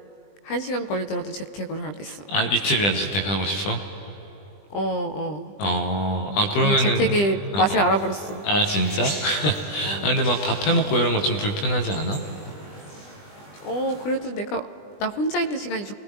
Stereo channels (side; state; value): right; late; 20 ms